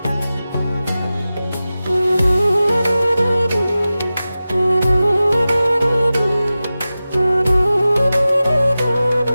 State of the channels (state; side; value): inverted; both; correlation -0.95